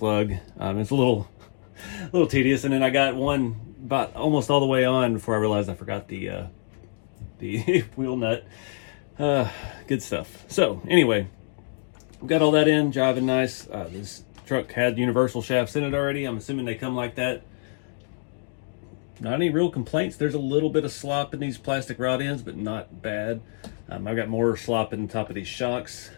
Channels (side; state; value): right; silent; digital silence